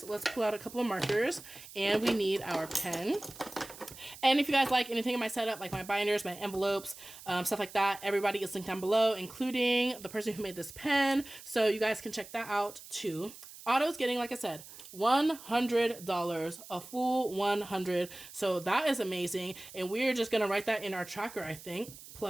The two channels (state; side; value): noise; right; hiss, 17 dB below the sound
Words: Let's pull out a couple of markers, and we need our pen. And if you guys like anything in my setup, like my binders, my envelopes, stuff like that, everybody is linked down below, including the person who made this pen. So you guys can check that out too. Otto's getting, like I said, $100, a full 100. So that is amazing. And we're just going to write that in our tracker, I think,